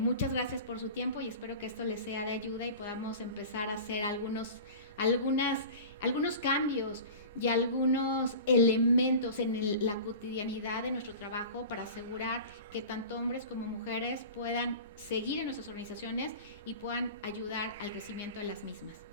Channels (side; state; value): both; inverted; correlation -0.36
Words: gracias por su tiempo y espero que esto les sea de ayuda y podamos empezar a hacer algunos cambios y algunos elementos en la cotidianidad de nuestro trabajo para asegurar que tanto hombres como mujeres puedan seguir en nuestras organizaciones y puedan ayudar al crecimiento de las mismas.